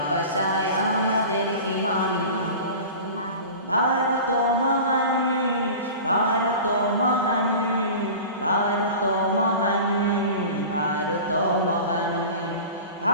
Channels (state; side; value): inverted; both; correlation -0.36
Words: আমাদের ঈমান। ভারত মহান ভারত মহান ভারত মহান ভারত মহান